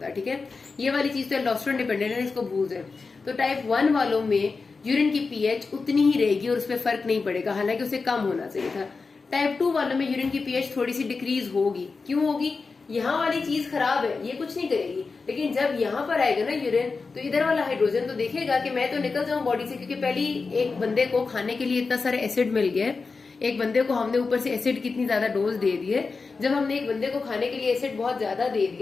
ठीक है, ये वाली चीज तो एल्डोस्टेरोन डिपेंडेंट है, इसको भूल जाए। तो टाइप 1 वालों में यूरिन की पीएच उतनी ही रहेगी और उस पर फर्क नहीं पड़ेगा, हालांकि उसे कम होना चाहिए था। टाइप 2 वालों में यूरिन की पीएच थोड़ी सी डिक्रीज होगी। क्यों होगी? यहाँ वाली चीज खराब है, ये कुछ नहीं करेगी, लेकिन जब यहाँ पर आएगा ना यूरिन, तो इधर वाला हाइड्रोजन तो देखेगा कि मैं तो निकल जाऊं बॉडी से, क्योंकि पहली एक बंदे को खाने के लिए इतना सारा एसिड मिल गया है, एक बंदे को हमने ऊपर से एसिड कितनी ज्यादा डोज दे दी है। जब हमने एक बंदे को खाने के लिए एसिड बहुत ज्यादा दे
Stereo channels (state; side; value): quieter; right; 4.4 dB